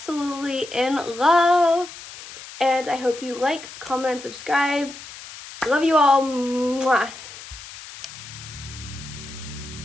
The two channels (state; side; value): noise; left; hiss, 15 dB below the sound